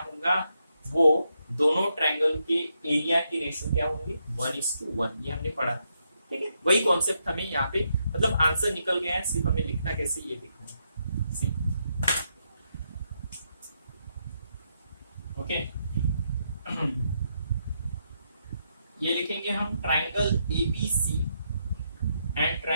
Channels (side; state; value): both; inverted; correlation -0.80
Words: होगा, वो दोनों ट्रायंगल के एरिया की रेशियो क्या होंगे, 1:1। ये हमने पढ़ा, ठीक है। वही कॉन्सेप्ट हमें यहाँ पे मतलब आंसर निकल गया है, सिर्फ हमें लिखना कैसे ये देखना है। ओके ये लिखेंगे हम, triangle ABC and